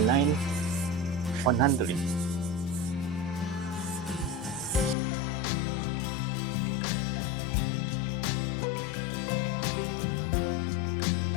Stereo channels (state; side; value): drops out; right; at 5.0 s